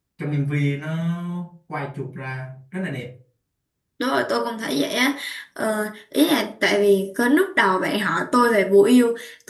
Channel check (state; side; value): identical; both; correlation 1.00